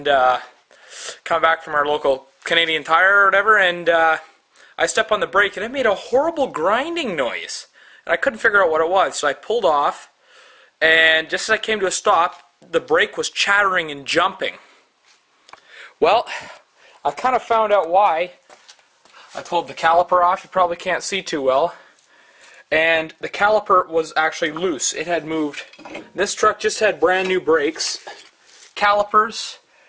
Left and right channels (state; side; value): identical; both; correlation 1.00